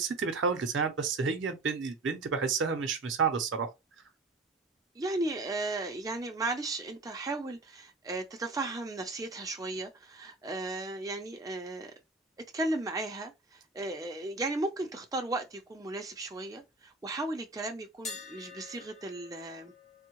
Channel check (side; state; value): left; quieter; 3.3 dB